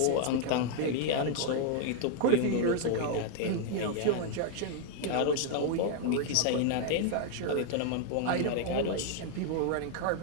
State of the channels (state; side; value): different; both; correlation 0.00